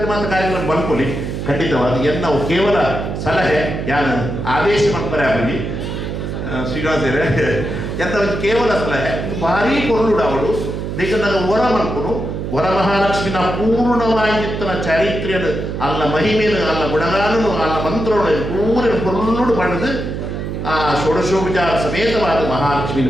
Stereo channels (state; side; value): noise; right; hum, 5 dB below the sound